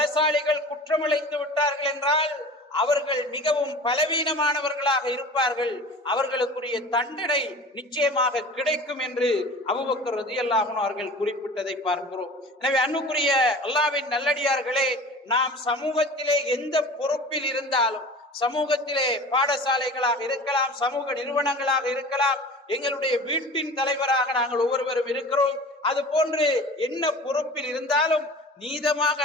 குற்றமிழைத்து விட்டார்கள் என்றால் அவர்கள் மிகவும் பலவீனமானவர்களாக இருப்பார்கள். அவர்களுக்குரிய தண்டனை நிச்சயமாக கிடைக்கும் என்று அபூபக்கர் ரலியல்லாஹு அன்ஹு அவர்கள் குறிப்பிட்டதை பார்க்கிறோம். எனவே அன்புக்குரிய அல்லாஹ்வின் நல்லடியார்களே, நாம் சமூகத்திலே எந்த பொறுப்பில் இருந்தாலும், சமூகத்திலே பாடசாலைகளாக இருக்கலாம், சமூக நிறுவனங்களாக இருக்கலாம், எங்களுடைய வீட்டின் தலைவராக நாங்கள் ஒவ்வொருவரும் இருக்கிறோம். அது போன்று என்ன பொறுப்பில் இருந்தாலும் நீதமாக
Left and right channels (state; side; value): normal; both; correlation 0.39